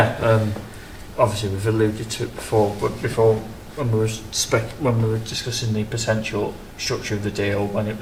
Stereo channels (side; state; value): both; identical; correlation 1.00